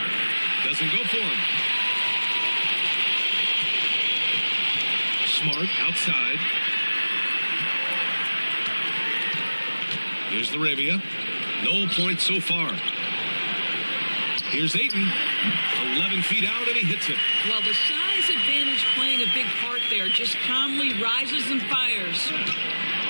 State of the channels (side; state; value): both; inverted; correlation -1.00